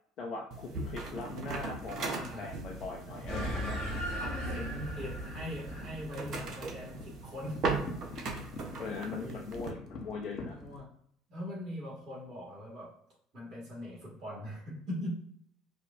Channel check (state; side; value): normal; both; correlation 0.51